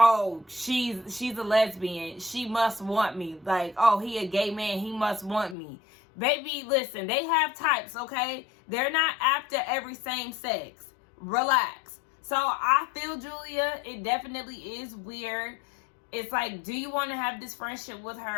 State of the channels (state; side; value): drops out; right; at 5.6 s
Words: she's a lesbian, she must want me. Like, oh, he a gay man, he must want me. Baby, listen, they have types, okay? They're not after every same sex. Relax. So I feel, Julia, it definitely is weird. It's like, do you want to have this friendship with